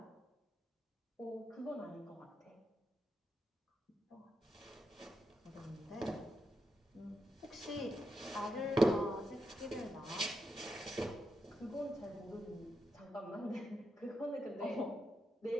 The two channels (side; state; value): both; normal; correlation 0.85